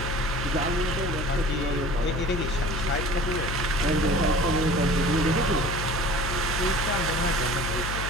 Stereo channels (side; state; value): left; noise; hum, 4 dB below the sound